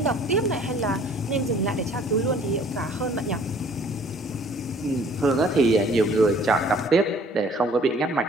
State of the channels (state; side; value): normal; both; correlation 0.55